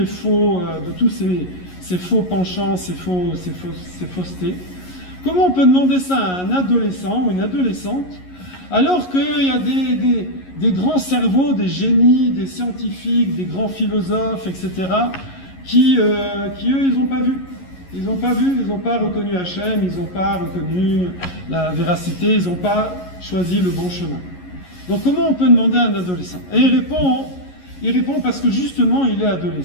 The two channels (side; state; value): right; late; 11 ms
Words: faux, de tous ces faux penchants, ces faussetés. Comment on peut demander ça à un adolescent ou une adolescente, alors qu'il y a des grands cerveaux, des génies, des scientifiques, des grands philosophes, etc., qui eux, ils n'ont pas vu. Ils n'ont pas reconnu Hachem, ils n'ont pas reconnu la véracité, ils n'ont pas choisi le bon chemin. Donc comment on peut demander à un adolescent? Et il répond parce que justement il est